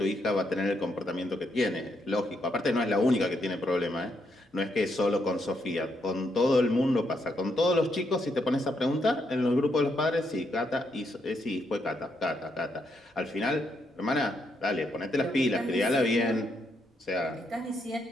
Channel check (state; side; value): normal; both; correlation 0.78